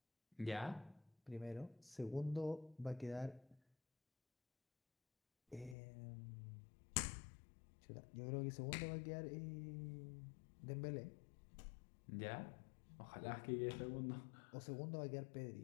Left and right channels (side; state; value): right; drops out; at 5.8 s